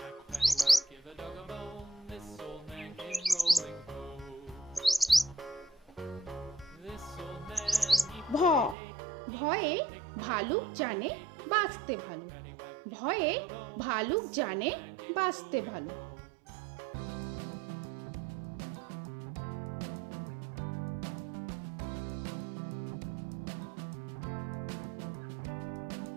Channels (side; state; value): left; drops out; at 8.8 s